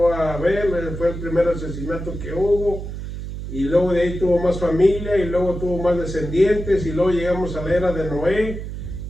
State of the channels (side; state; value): right; noise; hum, 7 dB below the sound